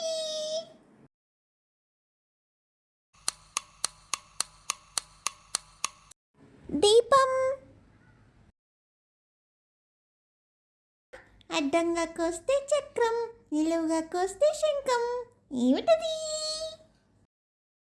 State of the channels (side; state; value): both; identical; correlation 1.00